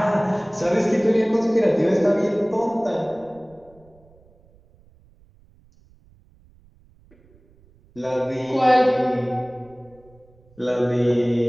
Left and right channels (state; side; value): noise; right; rumble, 29 dB below the sound